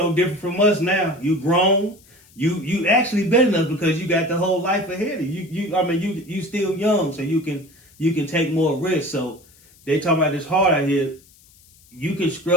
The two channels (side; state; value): left; noise; hiss, 28 dB below the sound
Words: different from us now. You grown. You actually better than us because you got the whole life ahead of you. You still young, so you can take more risks. So they talking about this hard out here. You can